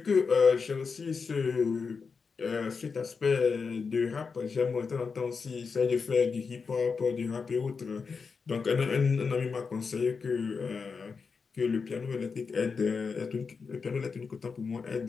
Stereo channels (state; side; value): quieter; right; 5.2 dB